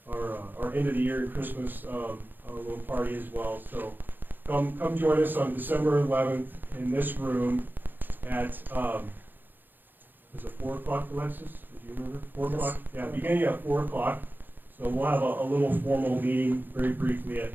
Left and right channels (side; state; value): left; late; 0.090 ms